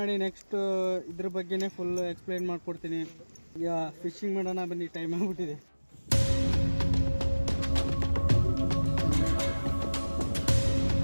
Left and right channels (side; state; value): both; inverted; correlation -1.00